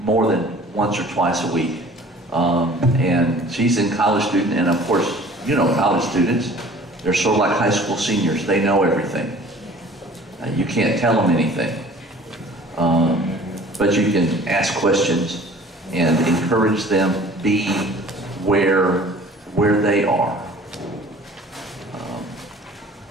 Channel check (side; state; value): both; normal; correlation 0.48